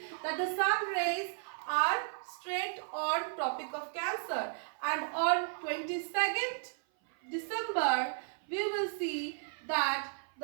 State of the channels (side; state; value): left; silent; 55 dB below the other